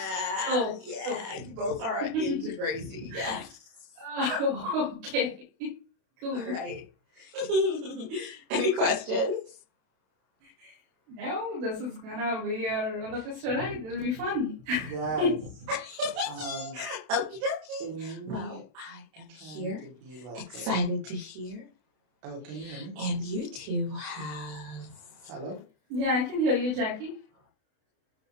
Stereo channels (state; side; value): late; left; 32 ms